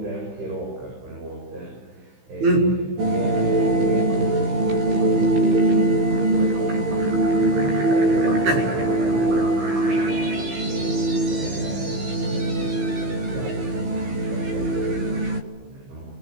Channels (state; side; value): late; left; 15 ms